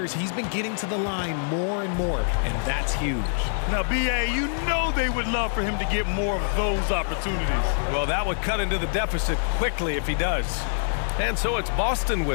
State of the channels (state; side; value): silent; right; 57 dB below the other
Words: he's been getting to the line more and more, and that's huge. Now, B.A., you know they would love for him to get more of those opportunities. Well, that would cut into the deficit quickly if he does. And so it's Boston